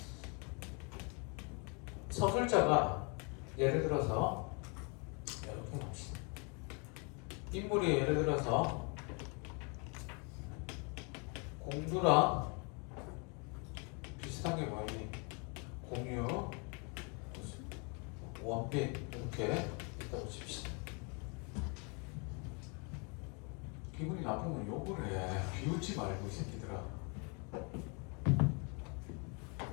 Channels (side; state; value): right; quieter; 34.0 dB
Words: 서술자가 예를 들어서 이렇게 인물이 예를 들어서 공두랑 비슷한 게 뭐니? 공유, 원빈 이렇게 있다고 칩시다. 기분이 나쁘면 욕을 해. 비웃지 말고 이 새끼들아.